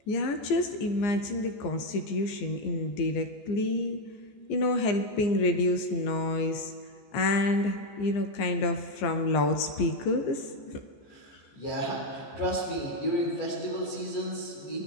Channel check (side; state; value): right; late; 15 ms